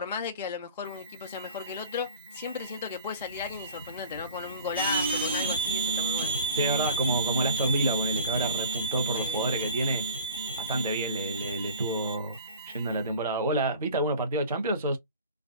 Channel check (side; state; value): both; inverted; correlation -0.40